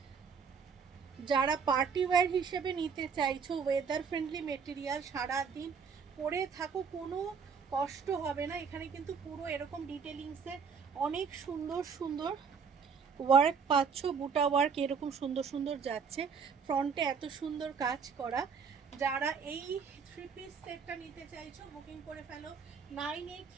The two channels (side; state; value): left; quieter; 6.1 dB